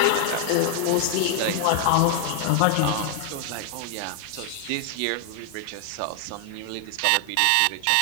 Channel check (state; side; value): different; both; correlation 0.00